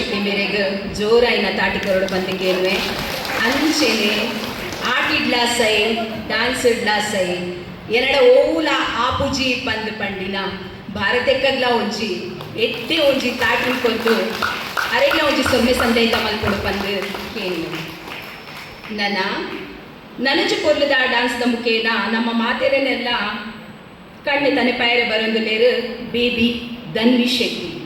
ಮೇರೆಗೆ ಜೋರಾಯಿನ ತಾಟಿಕೊರಡು ಬಂದಿದ್ದೇವೆ ಅಂಚೆನೆ ಆಟಿಡ್ಲಾ ಸೈ ಡ್ಯಾನ್ಸ್ ಇಡ್ಲಾ ಸೈ ಎರಡ ಓಲ ಆಪುಜಿ ಪಂದ್ ಪಂಡಿನ ಭಾರತಕ್ಕಗ್ಲ ಒಂಜಿ ಎತ್ತೆ ಒಂಜಿ ತಾಟಿ ಕೊಂದು ಅರೆಗ್ಲ ಒಂಜಿ ಸೊಮ್ಮೆ ಸಂದೇತ ಮಲ್ಪೊಡು ಪಂದ್ ಕೇಳಿ ನನಜು ಕೊರ್ಲದ ಡ್ಯಾನ್ಸ್ದ ಮುಖೇನ ನಮ್ಮ ಮಾತೆರೆನೆಲ್ಲ ಕಣ್ಣು ತನೆ ಪೈರೆ ಬರೋದು ಲೇರು ಬೇಬಿ ಧನ್ವಿ ಶೆಟ್ಟಿ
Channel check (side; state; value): both; identical; correlation 1.00